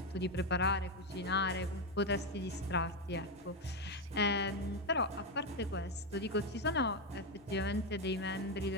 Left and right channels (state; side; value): normal; both; correlation 0.07